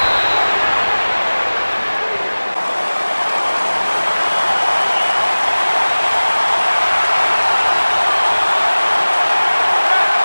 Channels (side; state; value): both; inverted; correlation -1.00